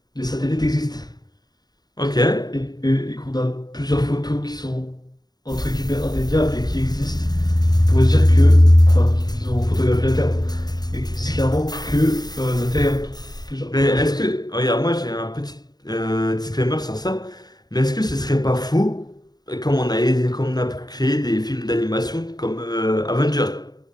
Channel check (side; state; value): right; late; 0.19 ms